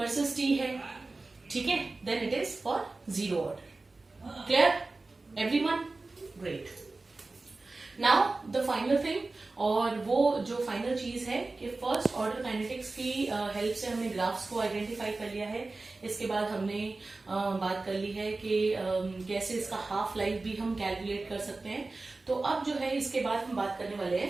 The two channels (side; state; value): left; quieter; 3.4 dB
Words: t है, ठीक है, then it is for zero order. Clear everyone? Great. Now the final thing, और वो जो फाइनल चीज है कि फर्स्ट ऑर्डर काइनेटिक्स की हेल्प से हमने ग्राफ्स को आइडेंटिफाई कर लिया है। इसके बाद हमने बात कर ली है कि कैसे इसका हाफ लाइफ भी हम कैलकुलेट कर सकते हैं। तो अब जो है इसके बाद हम बात करने वाले